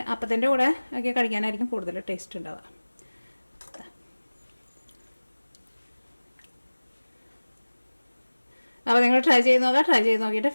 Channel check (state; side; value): inverted; both; correlation -1.00